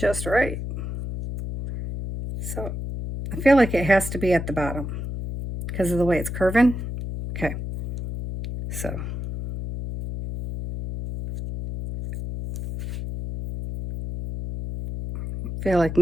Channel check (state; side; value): noise; left; hum, 6 dB below the sound